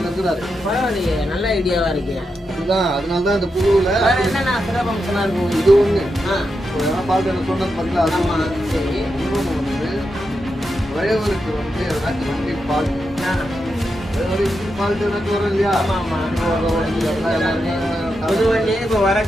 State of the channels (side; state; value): both; normal; correlation 0.86